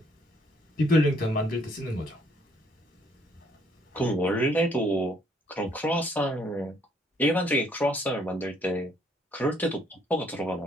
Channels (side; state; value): both; normal; correlation 0.66